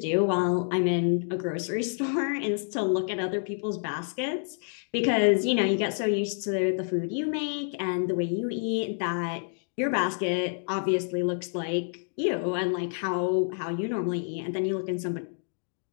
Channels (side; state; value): right; silent; 58 dB below the other